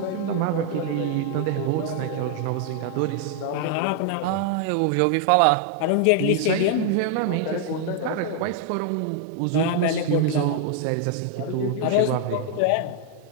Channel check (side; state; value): both; different; correlation 0.00